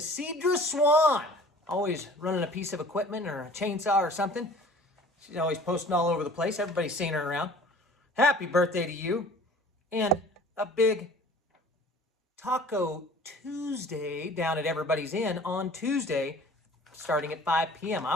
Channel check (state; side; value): normal; both; correlation 0.48